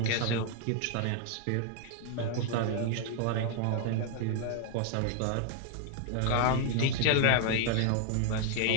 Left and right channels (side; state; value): both; different; correlation 0.00